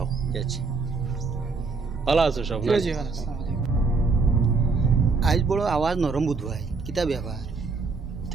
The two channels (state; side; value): quieter; left; 4.3 dB